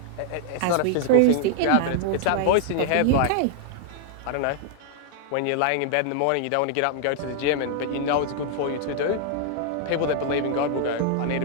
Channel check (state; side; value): different; both; correlation -0.01